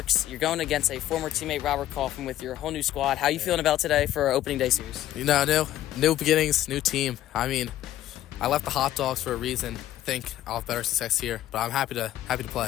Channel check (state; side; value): quieter; right; 13.1 dB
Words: You're going against a former teammate, Robert Kaufman, with your whole new squad. How are you feeling about today for our opening day series? You know, new beginnings, new team. I mean, I left the hot dogs for a reason. I think I'll have better success here, but I'm happy to